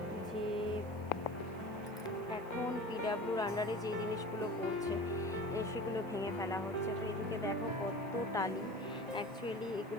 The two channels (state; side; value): noise; right; hiss, 27 dB below the sound